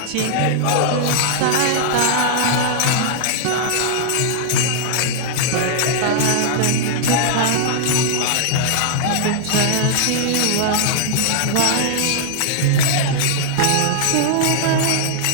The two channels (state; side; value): different; both; correlation -0.01